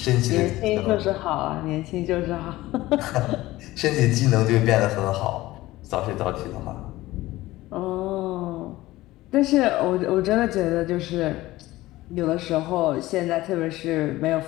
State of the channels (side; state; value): right; quieter; 17.5 dB